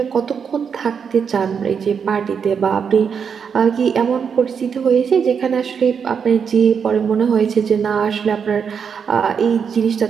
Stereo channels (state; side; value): quieter; left; 6.7 dB